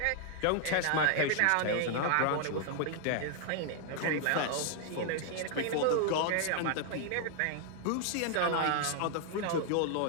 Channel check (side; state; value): both; different; correlation 0.00